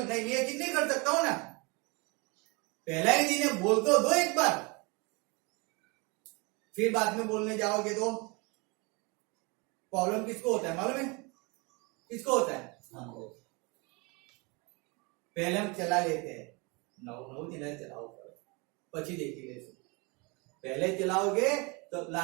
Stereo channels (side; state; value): left; quieter; 28.7 dB